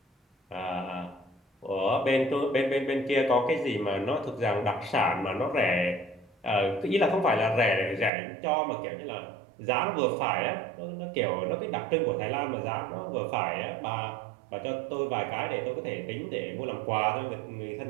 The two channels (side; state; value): left; drops out; at 8.1 s